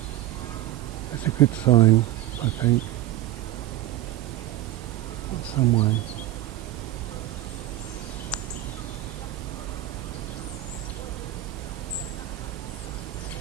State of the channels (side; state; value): left; quieter; 14.2 dB